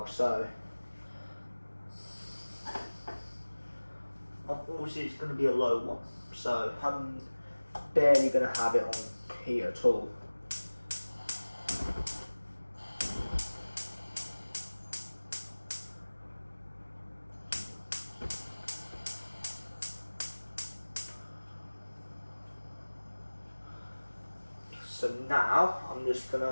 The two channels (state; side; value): inverted; both; correlation -1.00